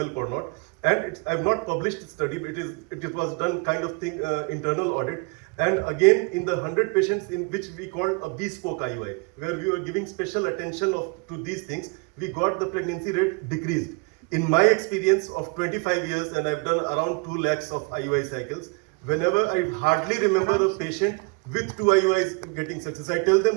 or not. And I've not published the study, but it was done kind of thing, internal audit. And again, in the 100 patients in which we called a bespoke IUI, where we were giving special attention to these things, we got the pregnancy rate decreased. In my experience of 25 years, and I've done around 2 lakhs of IUI cycles, whenever I hardly remember a patient with 2 IUIs getting success, I tell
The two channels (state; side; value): quieter; left; 31.3 dB